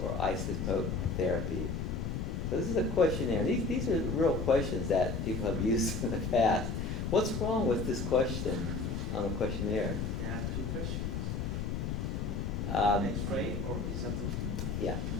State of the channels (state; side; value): noise; left; rumble, 2 dB below the sound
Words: isotope therapy? So this is a questionnaire. These are real questions that people have used in the past. What's wrong with this question on the questionnaire? There are two questions. X-ray or isotope? Yeah.